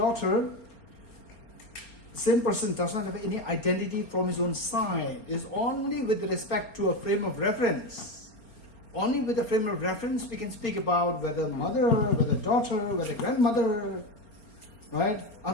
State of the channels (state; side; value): late; right; 4.3 ms